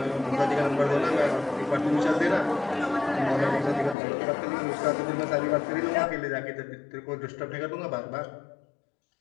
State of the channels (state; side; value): drops out; right; at 4.0 s